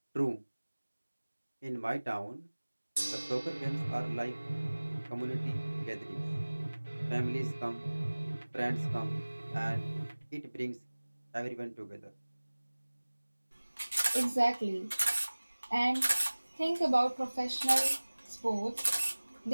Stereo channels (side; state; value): both; inverted; correlation -1.00